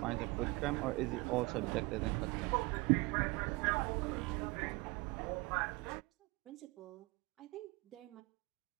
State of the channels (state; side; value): quieter; left; 24.9 dB